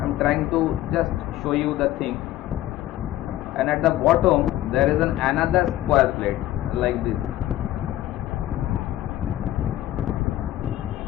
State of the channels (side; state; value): right; quieter; 14.3 dB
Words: am trying to just show you the thing. And at the bottom there is another square plate like this.